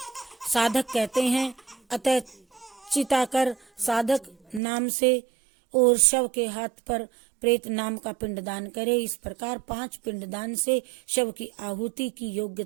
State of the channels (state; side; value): drops out; left; at 4.6 s